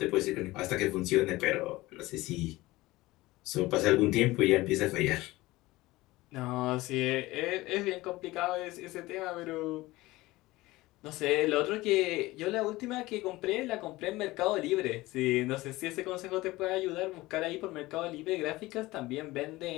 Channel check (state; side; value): quieter; right; 19.3 dB